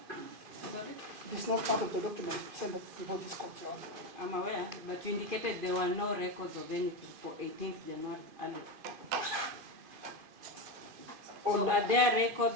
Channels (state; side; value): late; left; 2.5 ms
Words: Sorry? It's not part of the documents presented before this court, Your Honor. I'm aware, but you indicated there were no records of anything for 18th January earlier. So are there